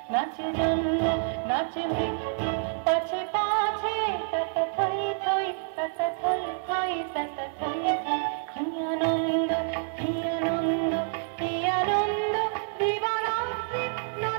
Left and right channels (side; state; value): left; silent; 59 dB below the other